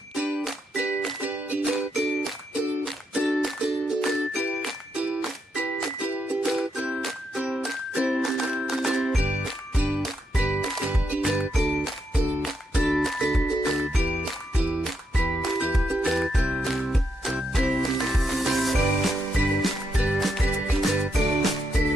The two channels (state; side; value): normal; both; correlation 0.80